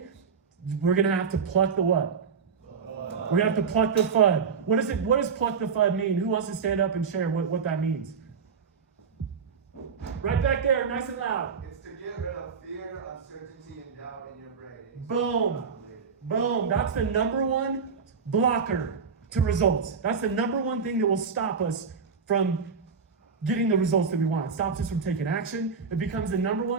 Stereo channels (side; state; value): left; quieter; 5.8 dB